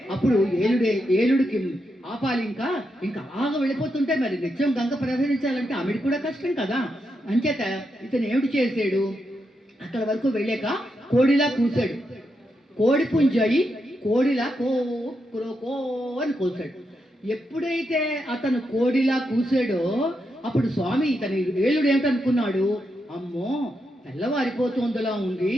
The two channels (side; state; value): both; normal; correlation 0.84